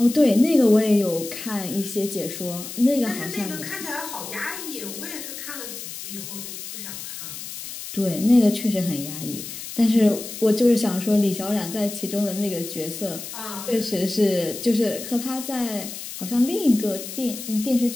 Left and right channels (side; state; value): left; noise; hiss, 10 dB below the sound